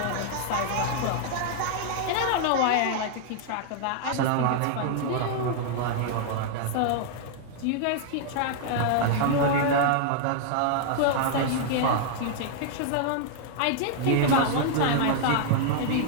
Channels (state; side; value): different; both; correlation -0.01